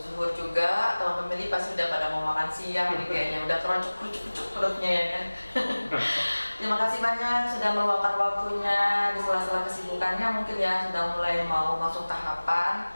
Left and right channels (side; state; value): both; inverted; correlation -1.00